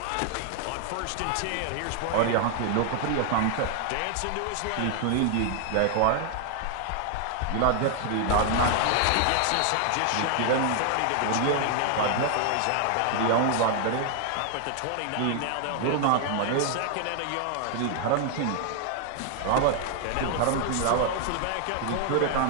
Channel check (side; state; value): both; different; correlation 0.00